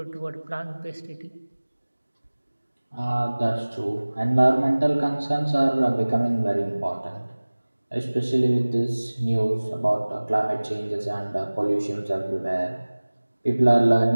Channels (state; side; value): inverted; both; correlation -1.00